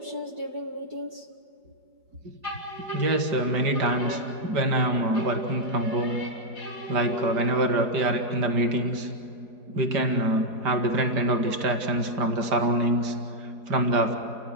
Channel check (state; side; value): late; left; 5.1 ms